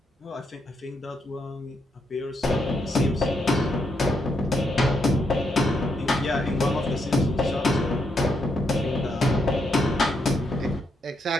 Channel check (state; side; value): normal; both; correlation 0.78